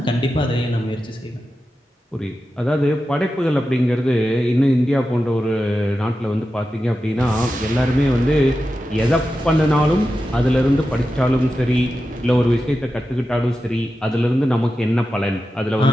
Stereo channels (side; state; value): both; normal; correlation 0.91